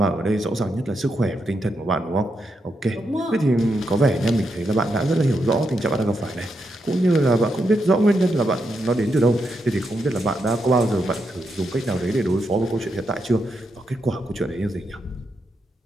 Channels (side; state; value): both; normal; correlation 0.83